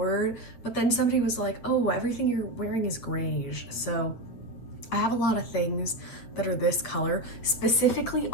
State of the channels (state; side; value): late; right; 8.7 ms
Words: but then somebody was like, oh, everything you're wearing is grayish. So I have a lot of things that are this color, specifically